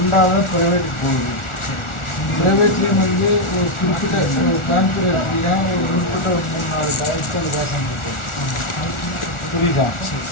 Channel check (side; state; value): right; late; 1.4 ms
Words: ப்ரைவேட்டுக்கு போகுது. ப்ரைவேட்லேயும் வந்து ஒரு குறிப்பிட்ட ஒரு கான்ஃபர் எடுத்தீங்கன்னா ஒரு குறிப்பிட்ட ஒரு 3-4 காலேஜுக்கு அது வேகம் இருக்குது. புரியுதா?